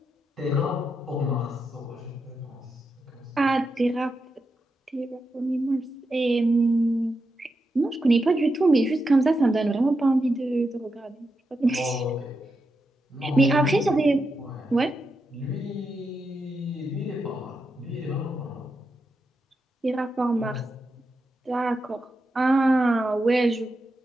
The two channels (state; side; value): normal; both; correlation 0.86